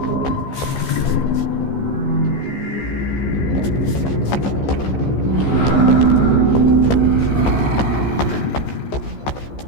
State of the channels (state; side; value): late; right; 15 ms